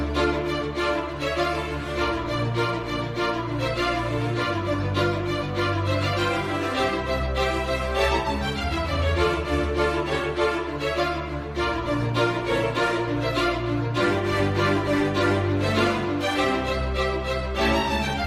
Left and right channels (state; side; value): identical; both; correlation 1.00